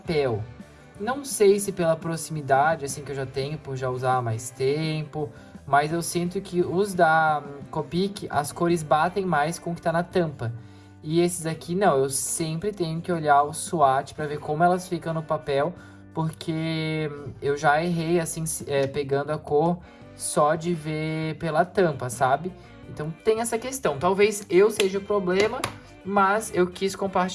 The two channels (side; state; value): both; identical; correlation 1.00